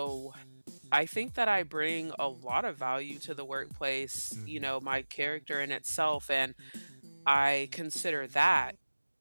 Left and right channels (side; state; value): both; inverted; correlation -1.00